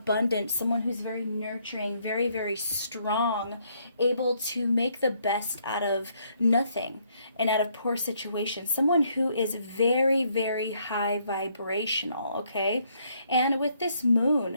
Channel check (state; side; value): inverted; both; correlation -0.70